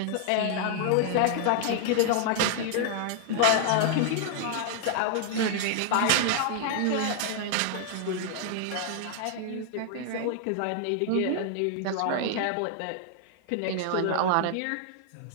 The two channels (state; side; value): different; both; correlation -0.01